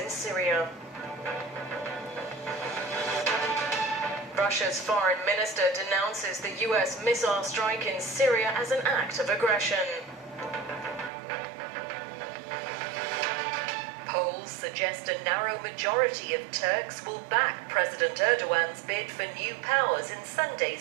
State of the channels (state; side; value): drops out; left; at 11.1 s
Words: Syria. Russia's foreign minister denounces the US missile strike in Syria as an act of aggression. Polls suggest a narrow majority of Turks will back President Erdogan's bid for new powers in